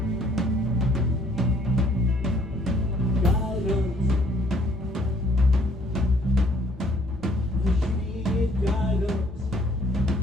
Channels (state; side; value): normal; both; correlation 0.62